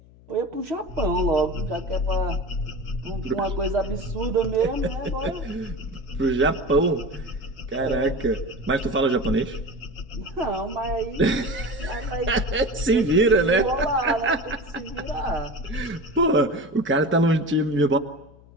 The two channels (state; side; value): noise; left; hum, 25 dB below the sound